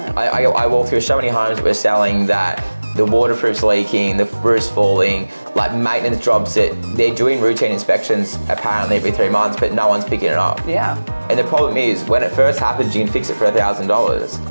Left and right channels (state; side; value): inverted; both; correlation -1.00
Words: I walk through so many homes that we're selling that the waterproof's leaking, the roof's falling, like maintenance jobs that they're doing routine inspections apparently every 3 months, but no one's picking it up. And the problem is, when it first happens, you can fix it for